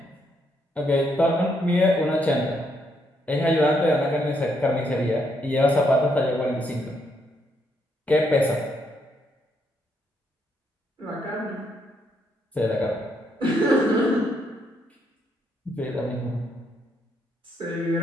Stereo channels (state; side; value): normal; both; correlation 0.75